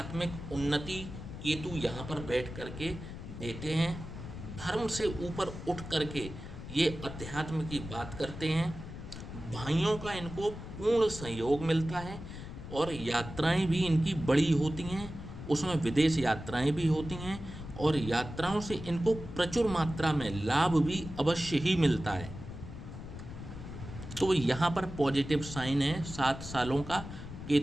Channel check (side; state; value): left; noise; rumble, 10 dB below the sound